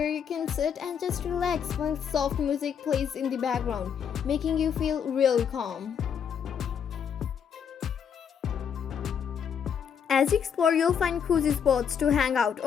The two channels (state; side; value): quieter; right; 7.7 dB